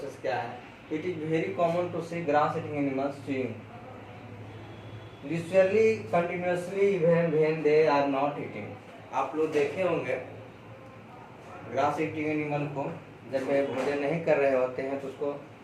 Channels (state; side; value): identical; both; correlation 1.00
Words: क्या है। It is very common to see grass eating animals chewing literally continuously when they are not eating। आप लोग देखे होंगे ग्रास ईटिंग एनिमल को जब वे भोजन नहीं कर रहे होते हैं तो उसको